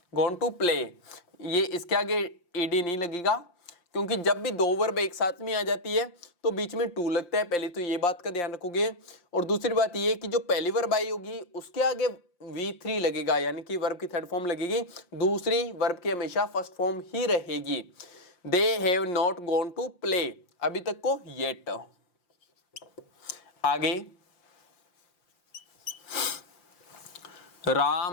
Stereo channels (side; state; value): right; late; 5.7 ms